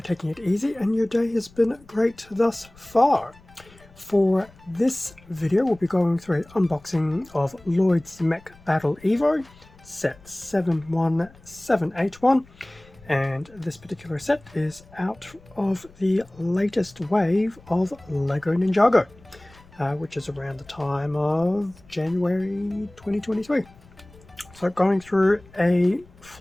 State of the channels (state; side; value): noise; left; rumble, 25 dB below the sound